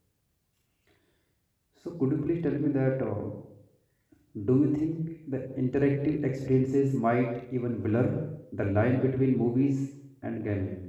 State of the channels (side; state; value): both; identical; correlation 1.00